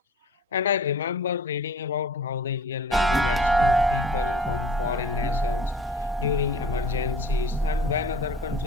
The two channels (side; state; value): both; normal; correlation 0.47